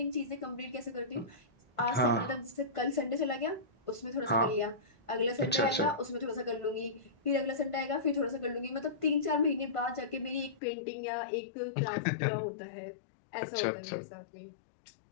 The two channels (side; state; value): right; drops out; at 10.6 s